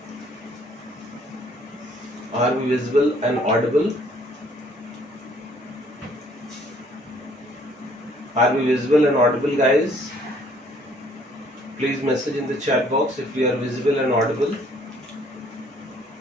Are we visible and audible? Are we visible and audible, guys? Please message in the chat box if we are visible and audible.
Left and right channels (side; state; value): both; normal; correlation 0.61